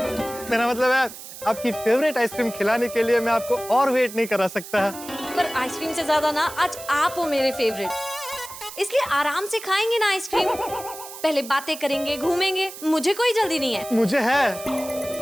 मेरा मतलब है आपकी फेवरेट आइसक्रीम खिलाने के लिए मैं आपको और वेट नहीं करा सकता। पर आइसक्रीम से ज्यादा ना आज आप हो मेरे फेवरेट, इसलिए आराम से खाएंगे ना आइसक्रीम। पहले बातें करेंगे, घूमेंगे, मुझे कोई जल्दी नहीं है। मुझे है।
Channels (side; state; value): right; noise; hiss, 13 dB below the sound